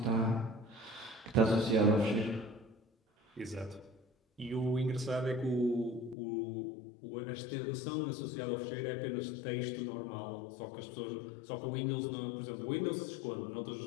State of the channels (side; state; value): right; drops out; at 6.2 s